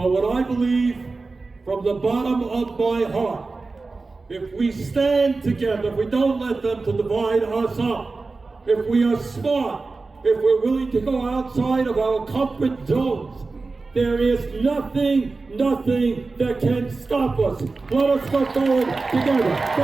what I believe from the bottom of my heart, if we stand together, if we don't let them to divide us up, if we are smart, if we're willing to go outside of our comfort zones, there is nothing that can stop us. Let us go forward together.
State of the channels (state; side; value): quieter; left; 3.8 dB